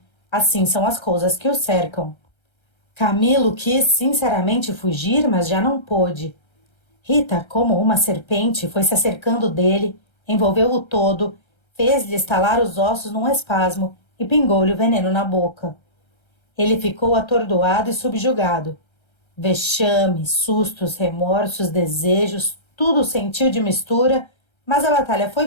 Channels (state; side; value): late; right; 1.3 ms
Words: assim são as coisas que o cercam. Camilo quis sinceramente fugir, mas já não pôde. Rita, como uma serpente, foi se acercando dele, envolveu-o todo, fez-lhe estalar os ossos num espasmo e pingou-lhe o veneno na boca. Ele ficou atordoado e subjugado. Vexame, sustos, remorsos, desejos, tudo sentiu de mistura, mas a batalha